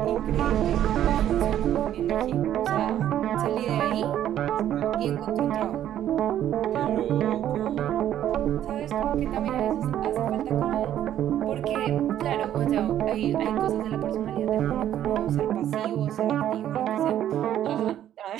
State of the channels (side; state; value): left; quieter; 11.3 dB